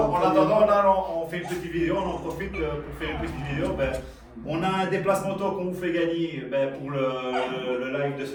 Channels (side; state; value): both; identical; correlation 1.00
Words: attendant, là, on fait une petite vidéo. On en profite pour faire une petite vidéo. On a un déplacement auto qu'on vous fait gagner pour le live de